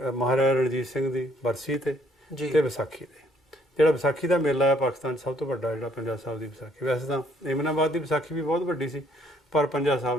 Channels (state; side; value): normal; both; correlation 0.65